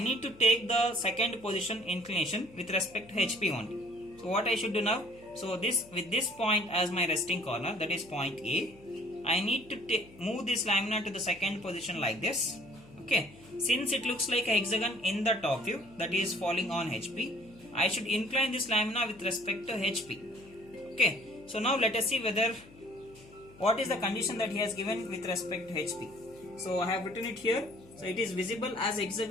to take the second position inclination with respect to HP only. So what I should do now? So with this point as my resting corner, that is point A, I need to move this lamina to the second position like this. Okay. Since it looks like a hexagon in the top view, that is falling on HP, I should incline this lamina with respect to HP. Okay. So now let us see what is the condition that he has given with respect to HP. So I have written it here. So it is visible as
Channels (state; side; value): noise; left; hum, 23 dB below the sound